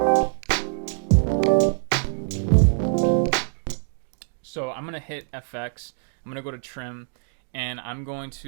So I'm gonna hit FX. I'm gonna go to trim, and I'm going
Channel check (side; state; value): left; silent; digital silence